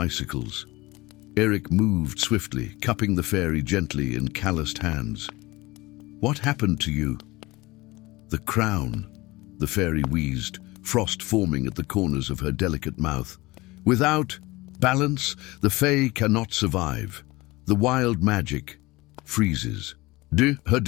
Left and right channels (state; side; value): quieter; right; 21.2 dB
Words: Eric moved swiftly, cupping the fairy gently in calloused hands. "What happened to you?" "The crown," the fairy wheezed, frost forming at the corners of her delicate mouth. "Without balance, the fae cannot survive. The wild magic freezes." Her